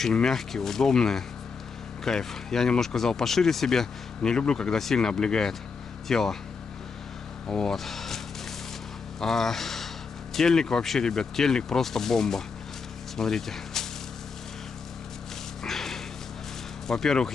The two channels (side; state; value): right; quieter; 5.1 dB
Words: мягкие, удобные. Кайф. Я немножко взял пошире себе. Не люблю, когда сильно облегает тело. Вот. А тельник вообще, ребят, тельник просто бомба. Смотрите. Во-первых,